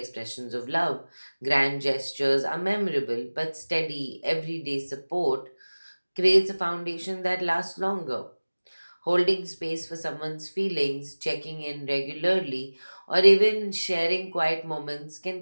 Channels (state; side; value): inverted; both; correlation -1.00